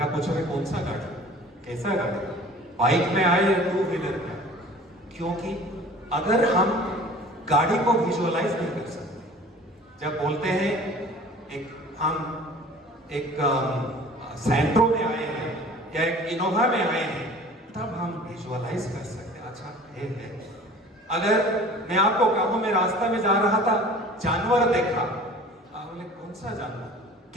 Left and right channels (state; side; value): normal; both; correlation 0.45